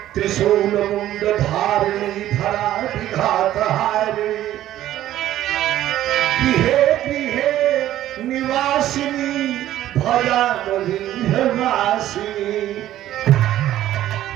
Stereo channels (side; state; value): left; quieter; 13.1 dB